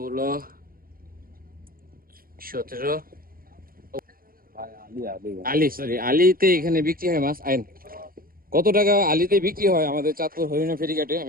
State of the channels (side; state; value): left; late; 0.42 ms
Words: 17। আলিতে এখানে বিক্রি হয় মাছ। আইন কত টাকা আলিতে বিক্রি হয় আমাদের চাঁদপুর হরিণা ফেরিঘাটে